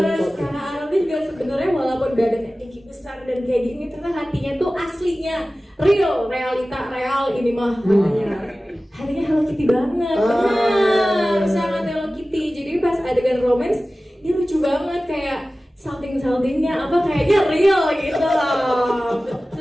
kakak Arnold ini juga sebenarnya walaupun badannya tinggi besar dan kayak gini, ternyata hatinya tuh aslinya real, real ini mah hatinya Hello Kitty banget, benar, sangat Hello Kitty. Jadi pas adegan romance dia lucu banget kayak salting-saltingnya apa kayaknya real gitu loh.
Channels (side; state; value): both; normal; correlation 0.96